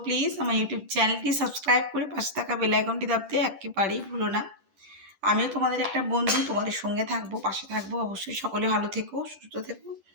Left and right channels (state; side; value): late; left; 10 ms